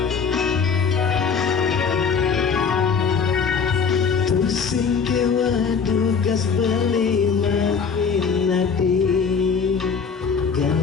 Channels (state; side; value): quieter; right; 5.9 dB